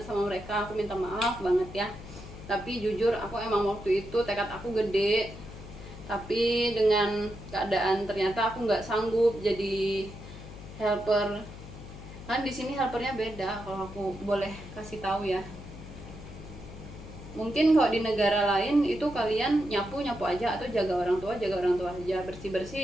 sama mereka, aku minta maaf banget ya. Tapi jujur aku emang waktu itu tekad aku gede, tapi dengan keadaan ternyata aku nggak sanggup jadi helper. Kan di sini helpernya beda, kalau aku boleh kasih tahu ya. Mungkin kalau di negara lain itu kalian nyapu aja, atau jaga orang tua aja, bersih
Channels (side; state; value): left; noise; hum, 14 dB below the sound